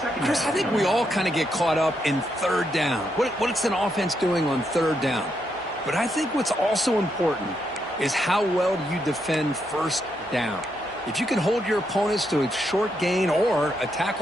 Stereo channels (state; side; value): normal; both; correlation 0.80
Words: Chris, I think we all kind of get caught up in 3rd down. What's an offense doing on 3rd down? But I think what's also important is how well do you defend 1st down. If you can hold your opponents to a short gain or a